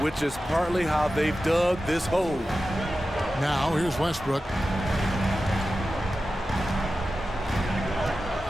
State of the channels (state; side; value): normal; both; correlation 0.93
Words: which is partly how they've dug this hole. Now, here's Westbrook.